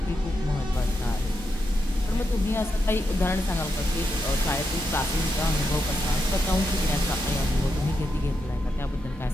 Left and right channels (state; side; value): normal; both; correlation 0.84